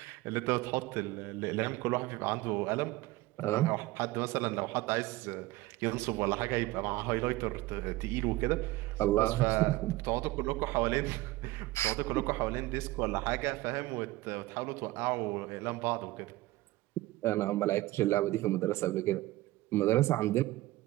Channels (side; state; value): left; quieter; 18.5 dB